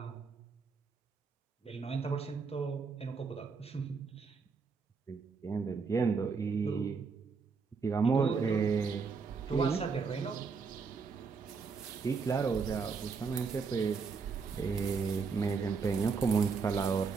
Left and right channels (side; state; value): left; quieter; 5.2 dB